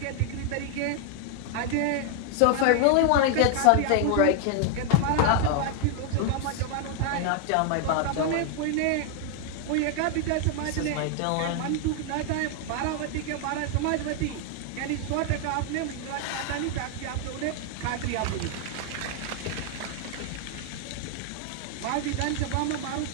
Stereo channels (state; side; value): different; both; correlation 0.00